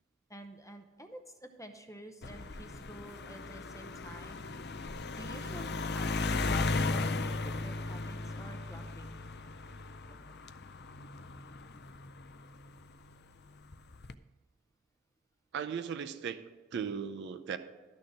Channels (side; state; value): both; normal; correlation 0.54